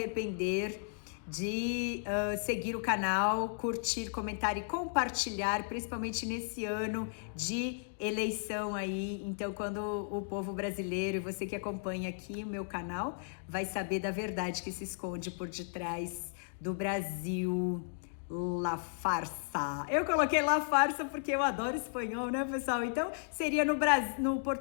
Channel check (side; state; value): right; silent; digital silence